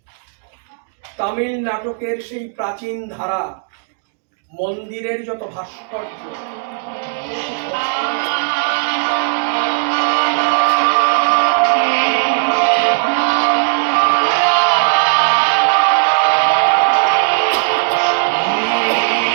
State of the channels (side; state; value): left; silent; digital silence